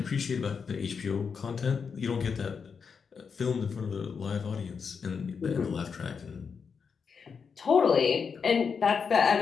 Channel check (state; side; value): quieter; right; 5.9 dB